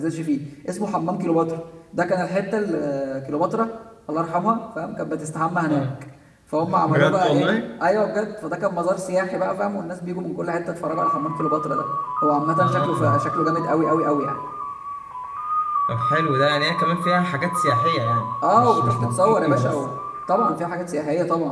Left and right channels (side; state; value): both; identical; correlation 1.00